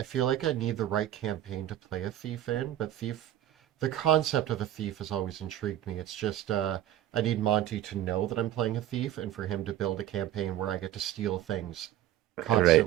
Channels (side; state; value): left; quieter; 12.7 dB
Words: feel like I need the right campaign to play a thief in, but the concept of a thief has always intrigued me. It's just I need Monty to know that I'm playing a thief and for him to build a campaign where I get to steal things Right.